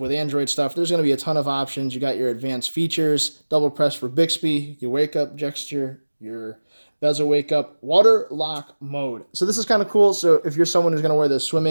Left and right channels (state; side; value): inverted; both; correlation -1.00